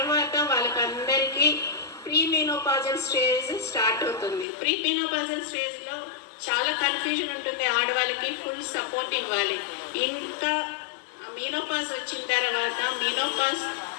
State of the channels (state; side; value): drops out; right; at 4.5 s